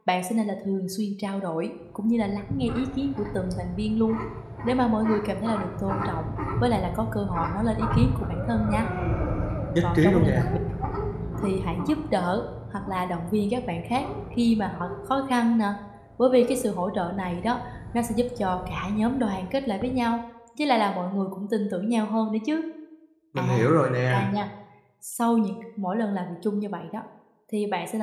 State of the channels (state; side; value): identical; both; correlation 1.00